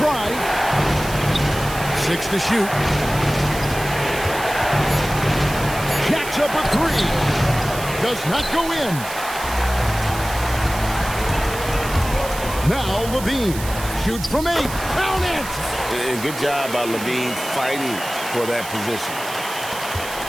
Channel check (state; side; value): noise; right; hiss, 11 dB below the sound